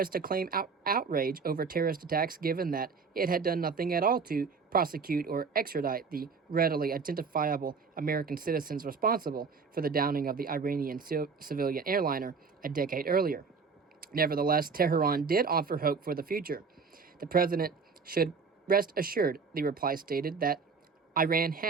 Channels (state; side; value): quieter; left; 5.2 dB